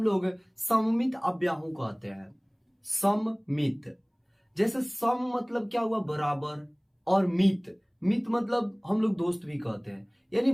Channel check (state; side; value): identical; both; correlation 1.00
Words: लोग सममित अव्याहू कहते हैं। सममित, जैसे सम मतलब क्या हुआ, बराबर, और मित, मित मतलब हम लोग दोस्त भी कहते हैं, यानी